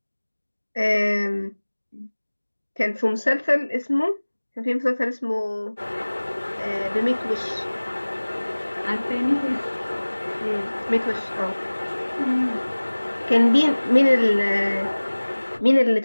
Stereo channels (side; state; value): both; inverted; correlation -1.00